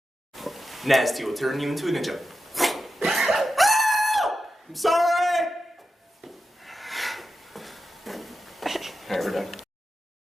Nasty will turn you into a ninja. I'm sorry! Alright, we're done.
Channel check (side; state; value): both; normal; correlation 0.91